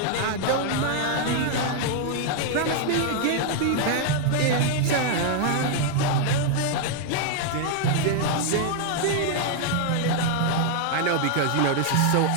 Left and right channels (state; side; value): different; both; correlation 0.00